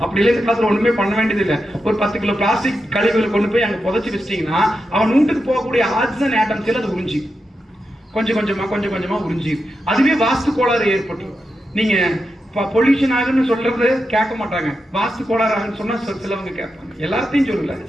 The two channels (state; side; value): normal; both; correlation 0.88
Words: அப்படி இல்லை, இந்த காலத்துல ஒண்ணுமே பண்ண வேண்டியது இல்லை. ஒரு 10 கிலோ பிளாஸ்டிக் கழிவுகளை கொண்டு போய் அங்க புதைச்சு வச்சிட்டீங்கன்னா, அவன் வீட்டுக்கு போகக்கூடிய ஆக்சிஜன் ஆட்டம்ஸ் அது உறிஞ்சி கொஞ்சம் கொஞ்சமா உறிஞ்சி, அதுவே வாஸ்து கோளாறு ஏற்பட்டு. நீங்க பொல்யூஷன் ஆகுன்னு சொல்றது கேட்க மாட்டாங்க, வாஸ்து கோளாறு ஆகுன்னு சொன்னா சிலவங்க கேட்பாங்க. எல்லாத்தையும் சொல்லல,